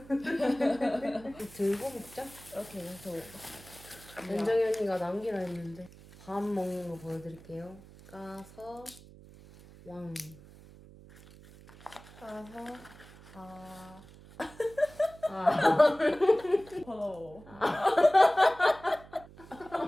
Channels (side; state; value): right; noise; hum, 21 dB below the sound